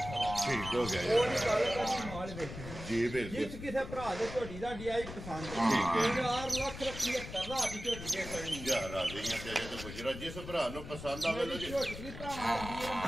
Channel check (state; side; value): noise; left; rumble, 10 dB below the sound